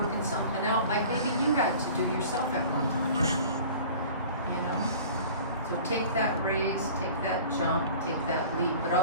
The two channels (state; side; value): inverted; both; correlation -0.44